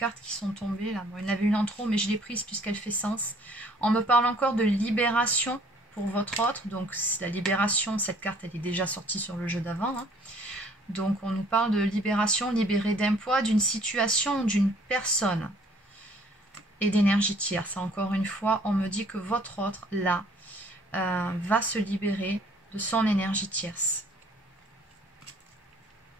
qui sont tombées. Là. Bon, il y en avait une en trop, mais je l'ai prise puisqu'elle fait sens. On me parle encore de libération pour votre autre. Donc la libération, cette carte, elle est déjà sortie sur le jeu d'avant. Hein. Donc on nous parle de libération, libérée d'un poids, d'une situation, d'une personne. Et d'énergie tierce. Encore une fois, on me dit que votre autre, là, va se libérer de son énergie tierce.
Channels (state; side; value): normal; both; correlation 0.58